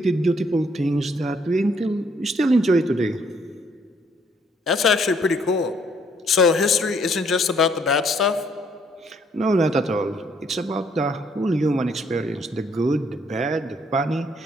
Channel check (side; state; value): both; normal; correlation 0.67